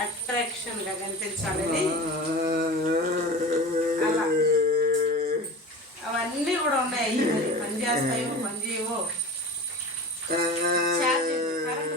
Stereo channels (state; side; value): normal; both; correlation 0.33